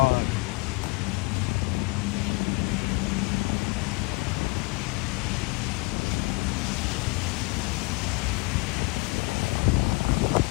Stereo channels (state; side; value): quieter; right; 27.2 dB